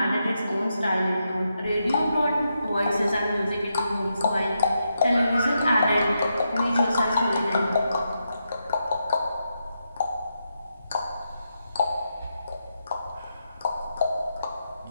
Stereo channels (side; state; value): both; inverted; correlation -0.84